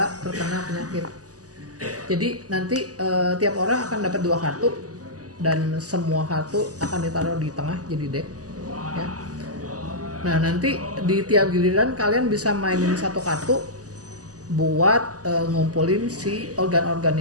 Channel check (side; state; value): left; late; 0.67 ms